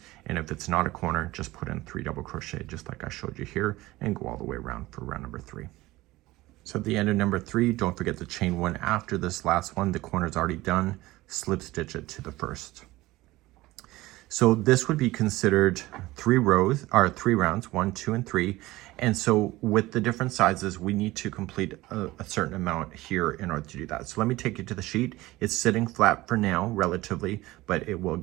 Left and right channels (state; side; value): quieter; left; 18.7 dB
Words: And if it's not a corner, just put in 3 double crochet, just like I showed you here, and go all the way around for round number 3. So at the end of number 3, don't forget to chain 1 after this last one. The corner's already done. Slip stitch it to the first. So this would be considered 3 rows, or 3 rounds, 1, 2, and 3. And so with the different sizes, we need to complete a certain amount here in order to do that. So let me take you to the sheet. It's sitting flat for now, relatively, but it will